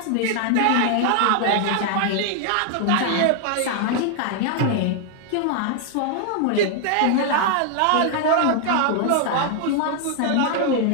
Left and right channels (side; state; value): both; different; correlation 0.00